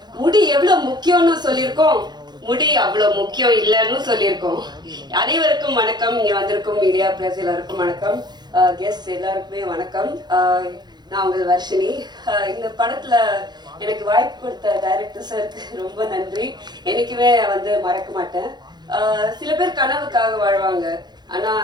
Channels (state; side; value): late; left; 0.21 ms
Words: முடி எவ்வளவு முக்கியம்னு சொல்லியிருக்கோம், முடி அவ்வளவு முக்கியம் இல்லைன்னு சொல்லியிருக்கோம். அனைவருக்கும் வணக்கம், இங்க வந்திருக்கும் மீடியா பிரஸ் எல்லாருக்கும் வணக்கம், கெஸ்ட் எல்லாருக்குமே வணக்கம். நான் உங்கள் வர்ஷினி. இந்த படத்துல எனக்கு வாய்ப்பு கொடுத்த டைரக்டர் சாருக்கு ரொம்ப நன்றி. என்னைக்குமே மறக்க மாட்டேன். சில பேர் கனவுக்காக வாழ்வாங்க, ஆனா